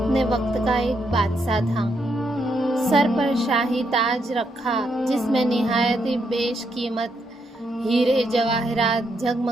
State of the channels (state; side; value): normal; both; correlation 0.78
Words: وقت کا ایک بادشاہ تھا، سر پر شاہی تاج رکھا جس میں نہایت بیش قیمت ہیرے جواہرات